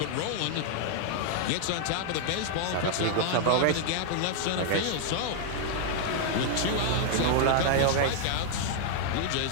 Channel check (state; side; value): different; both; correlation 0.00